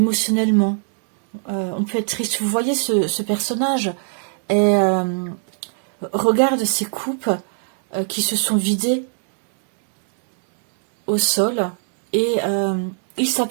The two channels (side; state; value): left; silent; 61 dB below the other